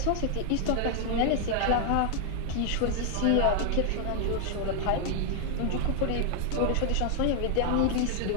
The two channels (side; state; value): both; different; correlation 0.00